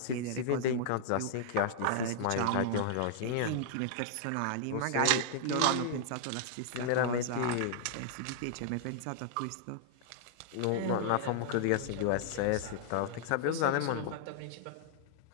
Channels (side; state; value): both; different; correlation -0.01